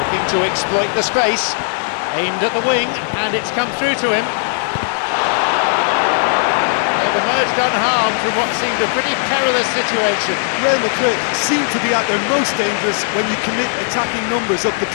to exploit the space. Aimed at the wing, and it's come through to him. Emerged unharmed from what seemed a pretty perilous situation. Real Madrid seem to be at their most dangerous when you commit attacking numbers up the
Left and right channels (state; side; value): silent; right; digital silence